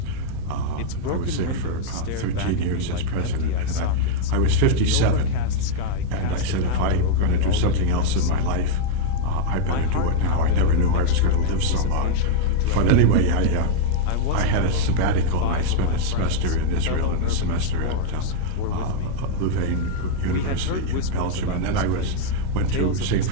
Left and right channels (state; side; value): different; both; correlation -0.01